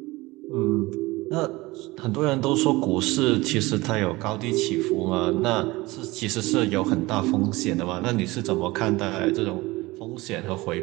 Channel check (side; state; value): left; quieter; 21.0 dB